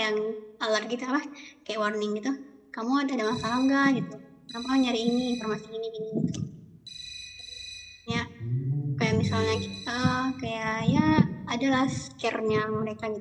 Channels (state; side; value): identical; both; correlation 1.00